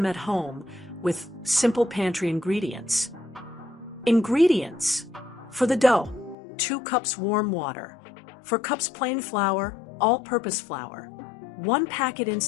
at home with simple pantry ingredients. Ingredients: for the dough, 2 cups warm water. For cups plain flour, all-purpose flour. 1 packet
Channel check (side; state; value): right; drops out; at 6.4 s